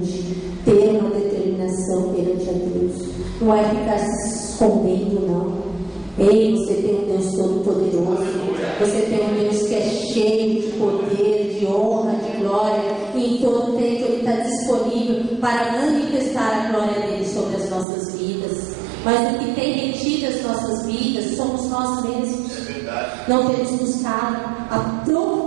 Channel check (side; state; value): left; drops out; at 17.9 s